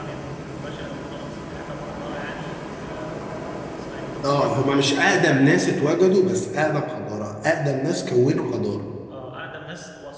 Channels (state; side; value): identical; both; correlation 1.00